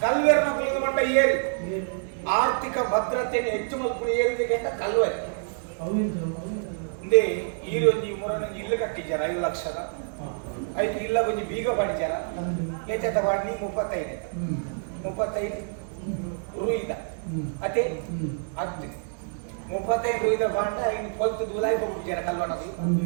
ಕಲ್ವೇರ್ ನಗ್ಲಿಗೆ ಮಂಡ ಏರಿ ಆರ್ಥಿಕ ಭದ್ರತೆಯನ್ನು ಹೆಚ್ಚು ಮಲ್ಪುಣ ಏರಿದಕ್ಕೆ ಅಂತ ಕಲ್ವೆ ಇಂದೇ ಈರೊಂಜಿ ಮುರೊಂಜಿ ಇಲ್ಲು ಕಟ್ಟಿದ್ದಾರ 5 ಲಕ್ಷದ ಆಯ್ತು ಇಲ್ಲ ಒಂಜಿ ಬೀಗ ಪಡಿಚಾರ ಲೆಚ್ಚದ ಬಾಡಿ 35 ರೂಯಿದ ಅದೇ 35 ರೂಯಿದ ಬಾಂಡ ಇನ್ನು ಕೊಲ್ತು ದುಲಾಯಿ ಹೋಗ್ಬಿಡ್ತಾರ ಕಲ್ವಣದು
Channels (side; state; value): left; silent; digital silence